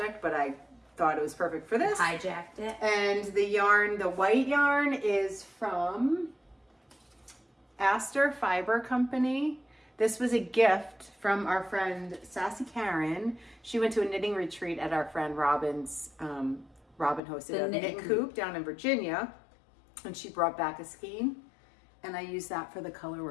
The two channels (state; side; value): drops out; right; at 17.2 s